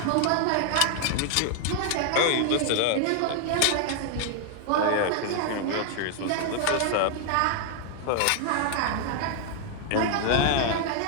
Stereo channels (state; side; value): different; both; correlation 0.00